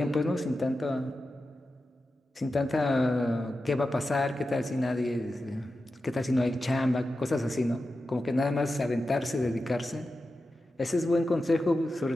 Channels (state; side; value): normal; both; correlation 0.91